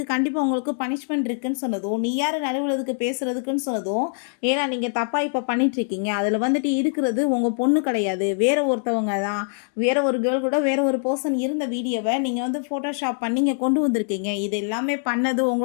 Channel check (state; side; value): silent; right; digital silence